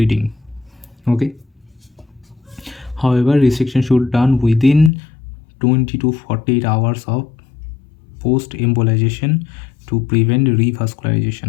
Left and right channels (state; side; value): drops out; right; at 4.9 s